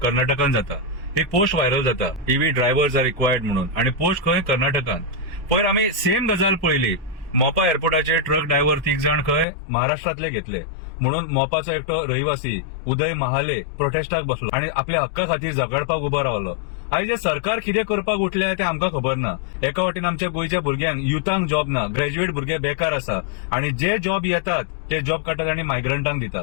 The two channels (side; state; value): right; drops out; at 9.5 s